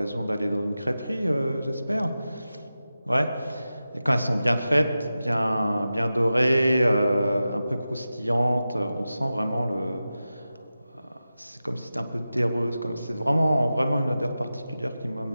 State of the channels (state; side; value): inverted; both; correlation -0.94